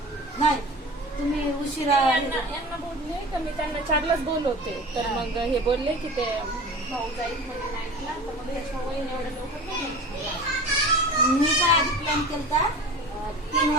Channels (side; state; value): both; normal; correlation 0.36